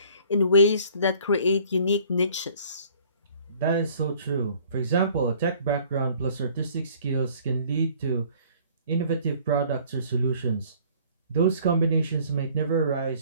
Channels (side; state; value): both; inverted; correlation -0.55